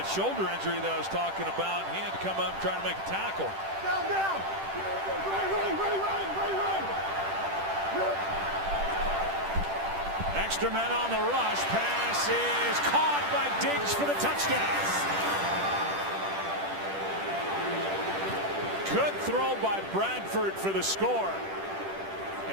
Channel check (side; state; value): left; late; 10 ms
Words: shoulder injury that I was talking about. He had to come up and try to make a tackle. Down. Extra men on the rush. Pass is caught by Diggs for the touchdown. Good throw by Bradford for the score.